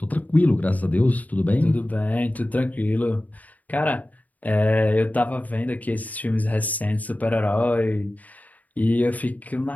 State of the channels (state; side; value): late; right; 0.075 ms